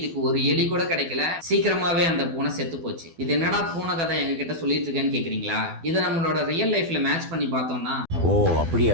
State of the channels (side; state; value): left; late; 12 ms